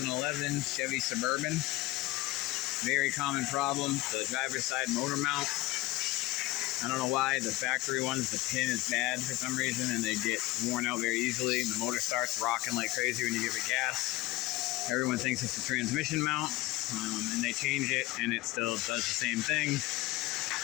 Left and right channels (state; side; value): quieter; right; 18.9 dB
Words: Chevy Suburban. Very common problem, the driver's side motor mount. I don't know why, the factory ones, the pin is bad for some reason and they get worn out very easily and the motor starts rocking like crazy when you give it gas. Everyone thinks it's the transmission mount, and they change it and it still does the same thing.